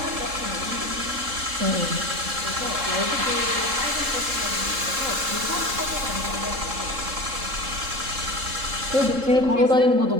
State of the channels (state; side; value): late; left; 3.7 ms